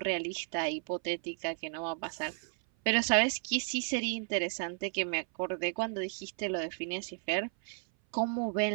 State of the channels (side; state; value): left; silent; 56 dB below the other